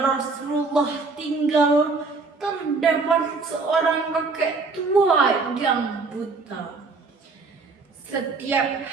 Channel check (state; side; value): quieter; left; 4.1 dB